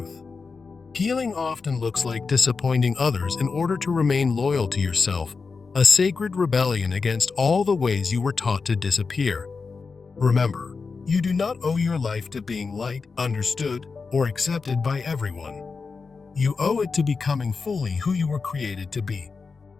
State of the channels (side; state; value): right; quieter; 4.7 dB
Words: Healing often looks like disappointing others in order to remain loyal to yourself, a sacred rebellion against all the ways you were taught to disappear. Remember, you do not owe your life to being liked, understood, or accepted by everyone. You owe it to becoming fully who you were created to be.